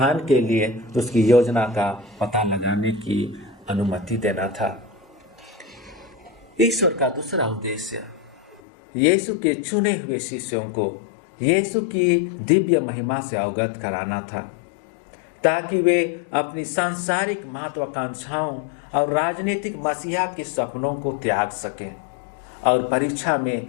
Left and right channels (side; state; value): right; drops out; at 8.6 s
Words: के लिए उसकी योजना का पता लगाने की अनुमति देना था। ईश्वर का दूसरा उद्देश्य यीशु के चुने हुए शिष्यों को यीशु की दिव्य महिमा से अवगत कराना था, ताकि वे अपनी सांसारिक महत्वाकांक्षाओं और राजनीतिक मसीहा के सपनों को त्याग सकें और परीक्षा में